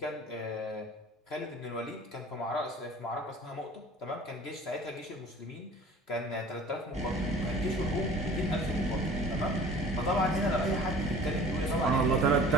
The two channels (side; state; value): both; normal; correlation 0.45